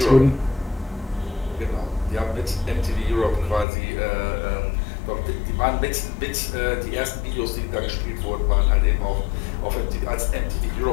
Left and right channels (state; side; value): drops out; right; at 3.7 s